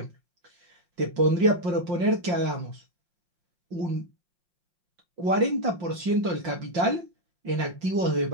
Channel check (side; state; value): left; late; 5.7 ms